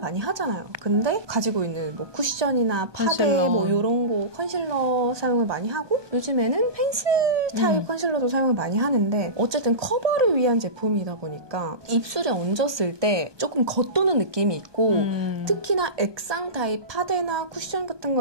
하잖아요. 근데 가지고 있는 뭐 쿠션이나 파데 뭐 이런 거 컨실러 사용을 많이 하고 요즘에는 펜슬 타입 컨실러도 사용을 많이 하는데 어쨌든 커버를 위한 제품이다 보니까 입술에 얹었을 때 조금 겉도는 느낌이 있고 특히나 액상 타입 파데나 쿠션 같은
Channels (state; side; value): late; left; 1.2 ms